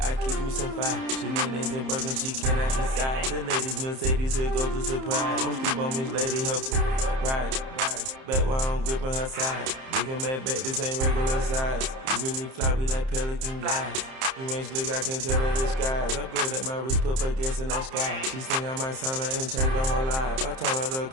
I keep me some fire. Shenanigans and Birkin, she cannot decide. The ladies Mercedes, here go to surprise. Don't sleep on Miss Lady, help ride. Back while I'm gripping her side. Big and mad back, this ain't regular size. You really fly, we like pelican guys. You ain't slick, I can tell her the skies. Upgrade at my wrist, put her gas in the sky. She think I might sign her and change her whole life. I told her to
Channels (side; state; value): left; late; 30 ms